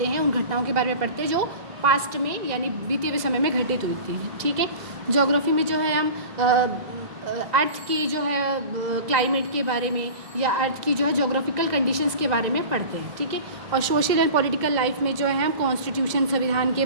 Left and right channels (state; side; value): late; left; 2.0 ms